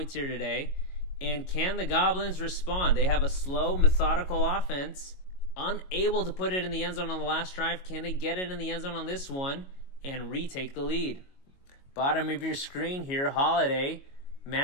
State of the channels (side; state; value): right; late; 22 ms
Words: here today. And can the Goblins respond? They have a slow, methodical offense, unable to put it in the end zone on the last drive. Can they get it in the end zone on this one and retake the lead? Bottom of your screen here, Holiday